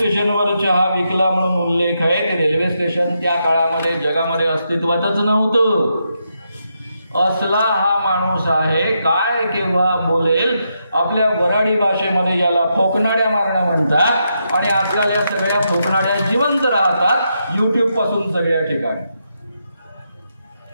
चहा विकला म्हणून उल्लेख आहे, ते रेल्वे स्टेशन त्या काळामध्ये जगामध्ये अस्तित्वातच नव्हतं. असला हा माणूस आहे, काय केव्हा बोलेल. आपल्या वराडी भाषेमध्ये याला फोकनाड्या मारणं म्हणतात, आणि आजकाल या सगळ्या फोकनाड्या जिवंत राहतात YouTube पासून सगळ्या ठिकाणी.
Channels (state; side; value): inverted; both; correlation -0.82